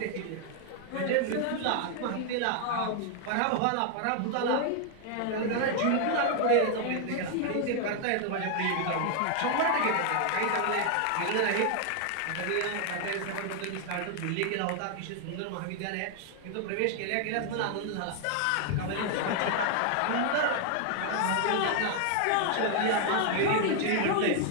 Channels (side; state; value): both; different; correlation 0.00